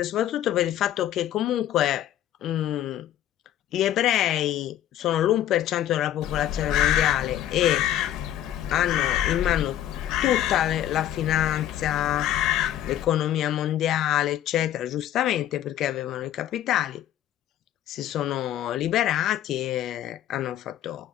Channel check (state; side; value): quieter; right; 12.0 dB